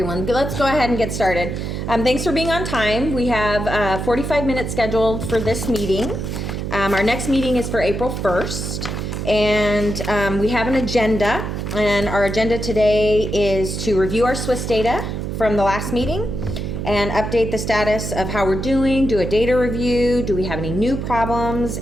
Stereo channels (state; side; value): noise; right; hum, 4 dB below the sound